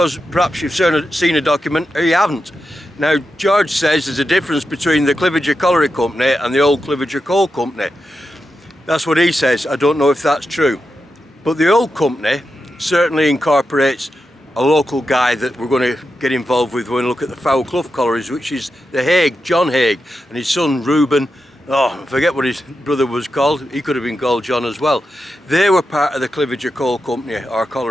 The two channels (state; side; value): normal; both; correlation 0.88